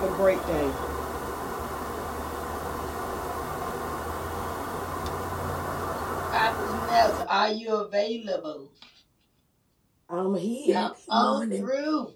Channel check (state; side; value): identical; both; correlation 1.00